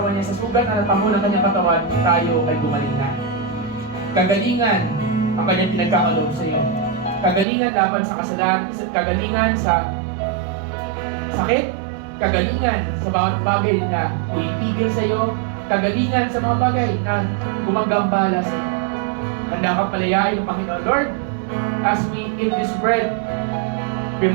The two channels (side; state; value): left; drops out; at 7.5 s